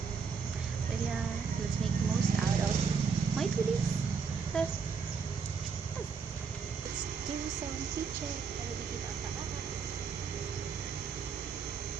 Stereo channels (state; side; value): quieter; left; 5.7 dB